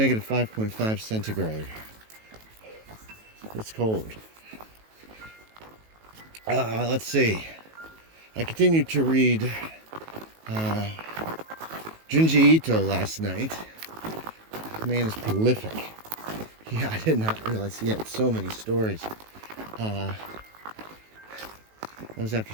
5.5 centigrade. It's cold. Let's see. I continued to read Junji Ito last night. The man is prolific. Yeah, I did not realize he had so many stories. That was after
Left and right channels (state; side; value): late; left; 18 ms